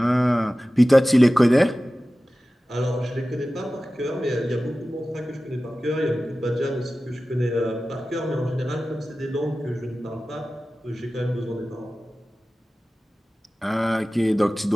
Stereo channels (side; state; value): both; normal; correlation 0.96